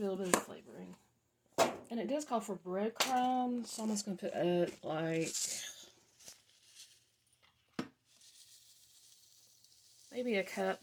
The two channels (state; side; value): identical; both; correlation 1.00